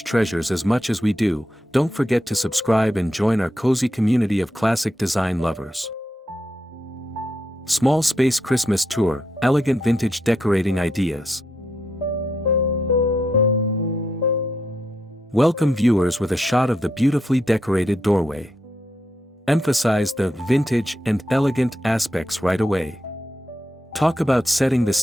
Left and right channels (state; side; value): normal; both; correlation 0.82